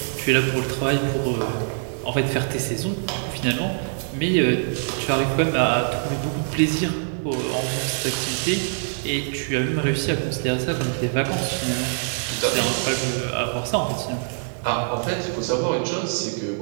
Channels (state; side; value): silent; left; 63 dB below the other